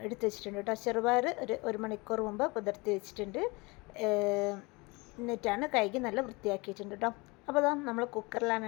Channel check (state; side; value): quieter; right; 25.9 dB